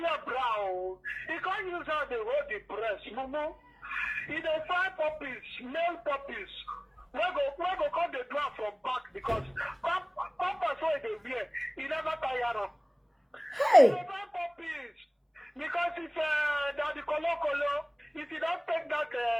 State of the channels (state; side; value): identical; both; correlation 1.00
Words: brow. He can't use how they hold the breast, mumu. He dey find puppies, male puppies. We go come the drum from back because pampers where they wear, he never tire them. Hey! He dey find puppies because if that the colo, if you don't take that